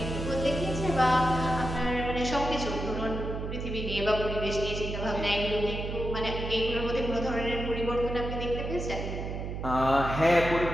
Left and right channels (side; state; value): right; noise; hum, 5 dB below the sound